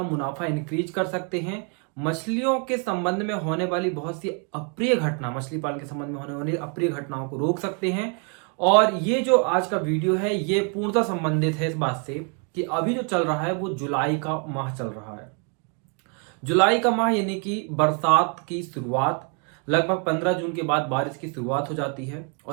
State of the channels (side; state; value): left; quieter; 38.4 dB